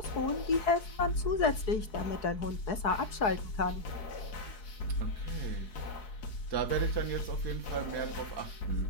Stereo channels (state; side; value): late; right; 4.7 ms